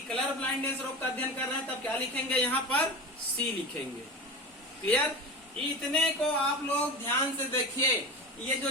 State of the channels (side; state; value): both; normal; correlation 0.27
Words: ब्लाइंडनेस रोग का अध्ययन कर रहे हैं तब क्या लिखेंगे? यहाँ पर सी लिखेंगे। क्लियर? इतने को आप लोग ध्यान से देखिए। ये जो